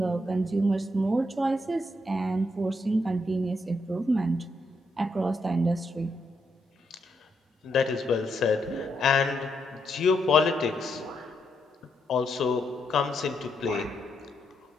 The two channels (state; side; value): normal; both; correlation 0.79